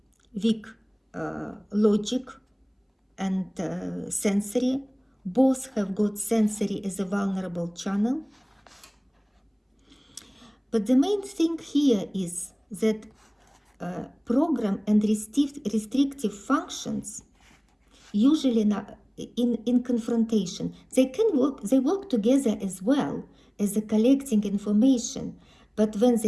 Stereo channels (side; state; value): both; identical; correlation 1.00